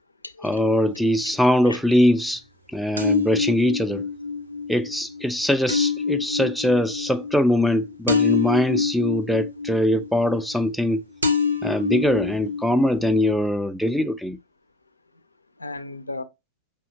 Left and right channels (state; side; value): normal; both; correlation 0.56